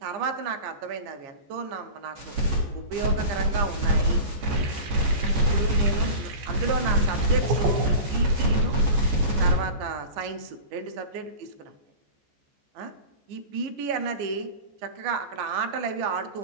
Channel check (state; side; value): late; left; 14 ms